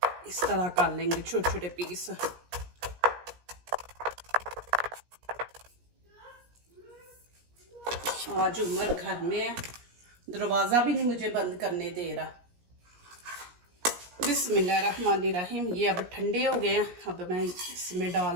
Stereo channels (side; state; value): left; late; 17 ms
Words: इस तरह कर लेंगे छोटे छोटे पीस। आज उमर घर में है, दरवाजा भी नहीं मुझे बंद करने दे रहा। बिस्मिल्लाहिर्रहमानिर्रहीम। ये अब ठंडे हो गए हैं, अब मैं इसमें